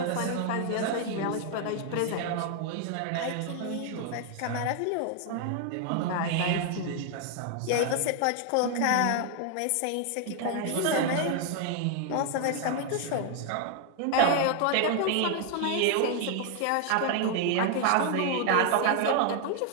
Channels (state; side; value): different; both; correlation 0.00